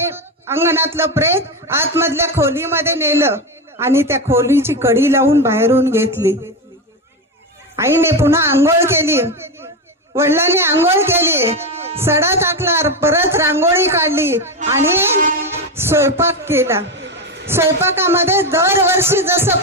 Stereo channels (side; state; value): both; normal; correlation 0.15